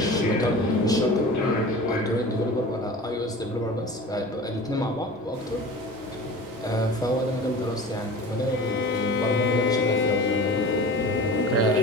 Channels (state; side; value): normal; both; correlation 0.37